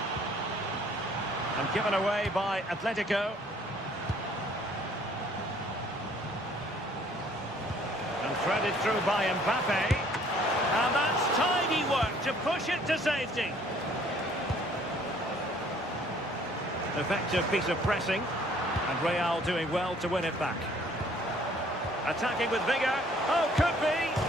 And given away by Atletico. And threaded through by Mbappe. And that's tidy work to push it to safety. Effective piece of pressing, and Real doing well to win it back. Attacking with vigour. Oh, could be!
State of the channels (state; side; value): normal; both; correlation 0.59